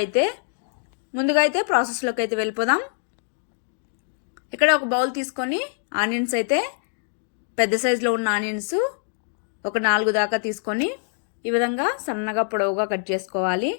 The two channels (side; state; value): right; silent; digital silence